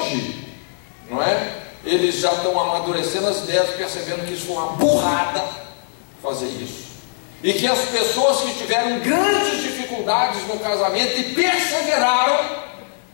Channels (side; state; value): right; silent; 65 dB below the other